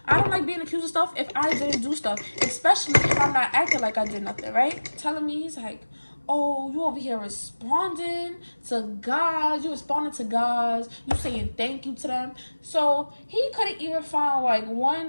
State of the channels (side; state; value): both; inverted; correlation -1.00